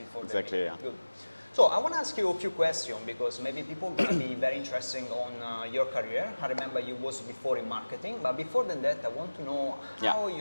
the exactly, meeting. yeah. Good. So I want to ask you a few questions because maybe people are going to be very interested on your career. I remember you was before in marketing, but before than that, I want to know how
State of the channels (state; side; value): inverted; both; correlation -1.00